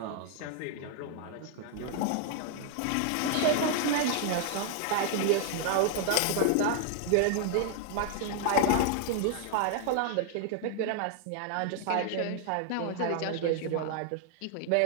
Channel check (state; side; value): different; both; correlation 0.00